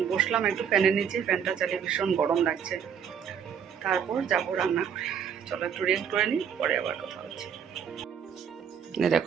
বসলাম একটু ফ্যানের নিচে, ফ্যানটা চালিয়ে ভীষণ গরম লাগছে। তারপর যাবো রান্না করে। চলো একটু রেস্ট করে নিই, পরে আবার কথা হচ্ছে।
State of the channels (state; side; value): quieter; left; 7.8 dB